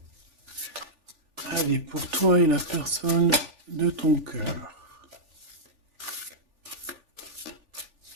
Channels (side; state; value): left; late; 3.4 ms